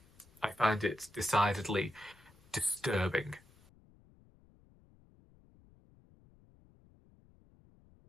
I find it decidedly disturbing.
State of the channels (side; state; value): left; noise; rumble, 28 dB below the sound